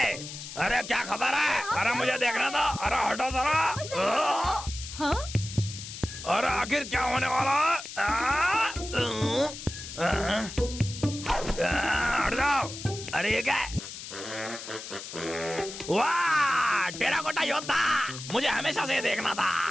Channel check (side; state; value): left; noise; hiss, 11 dB below the sound